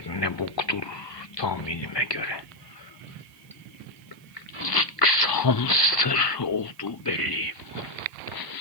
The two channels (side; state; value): right; noise; hiss, 28 dB below the sound